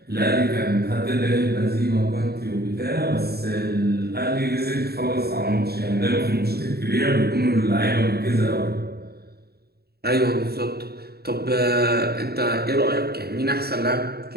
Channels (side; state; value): left; late; 0.46 ms